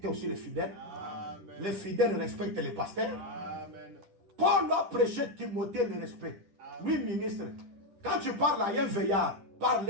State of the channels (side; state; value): left; late; 10 ms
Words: aussi les fidèles. Amen. Les fidèles respectent les pasteurs. Amen. Paul a prêché Timothée le respect. Lui, ministre, quand tu parles à un veillard, parle